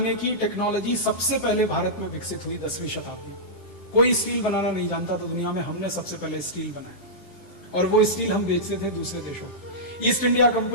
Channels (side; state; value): right; late; 10 ms